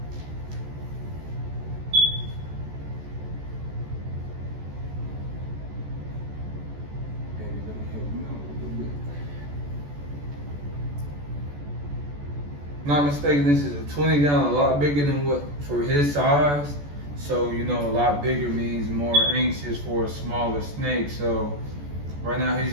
Not mistaken, this is a 20 gallon, a lot bigger than what for his size. So, you know, a lot bigger means more anxious for a smaller snake. So right now he's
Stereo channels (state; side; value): late; left; 14 ms